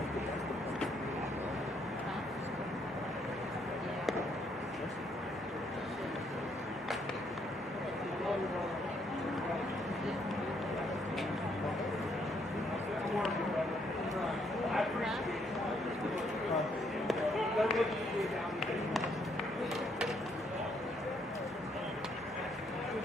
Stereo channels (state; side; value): normal; both; correlation 0.71